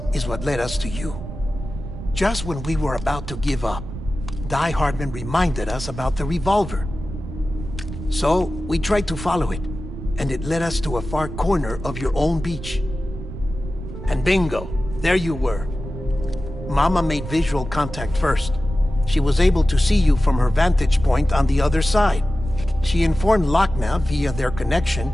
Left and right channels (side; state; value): right; noise; rumble, 9 dB below the sound